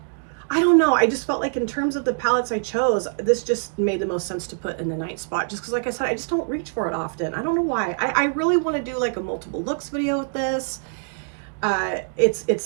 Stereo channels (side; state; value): left; silent; digital silence